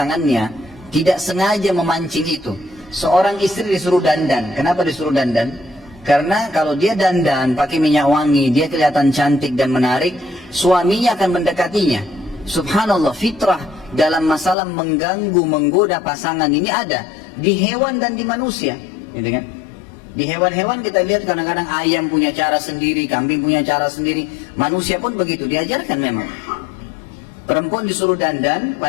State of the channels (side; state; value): right; drops out; at 14.6 s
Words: tidak sengaja memancing itu. Seorang istri disuruh dandan. Kenapa disuruh dandan? Karena kalau dia dandan pakai minyak wangi, dia kelihatan cantik dan menarik, suaminya akan mendekatinya. Subhanallah, fitrah dalam masalah mengganggu, menggoda pasangan ini ada di hewan dan di manusia, gitu kan? Di hewan-hewan kita lihat kadang-kadang ayam punya cara sendiri, kambing punya cara sendiri, manusia pun begitu, diajarkan memang. Perempuan disuruh dandan,